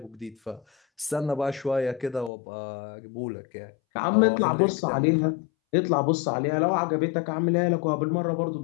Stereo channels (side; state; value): right; drops out; at 2.3 s